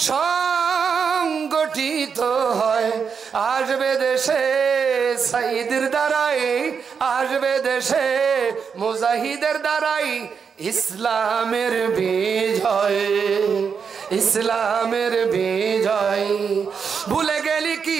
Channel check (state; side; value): quieter; left; 6.3 dB